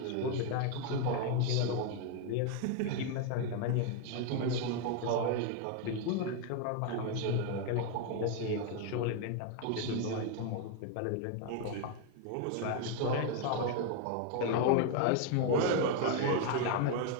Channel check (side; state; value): both; different; correlation 0.01